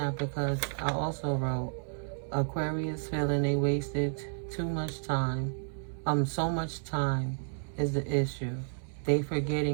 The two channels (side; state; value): left; silent; 57 dB below the other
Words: because I also wrote, Aquarius feeling they wasted too much time. So much time is the issue. They